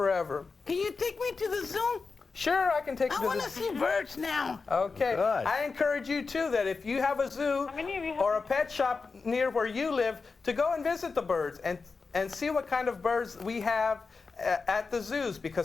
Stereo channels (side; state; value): right; quieter; 4.5 dB